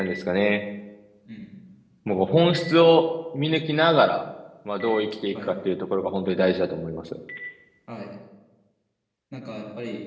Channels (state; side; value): identical; both; correlation 1.00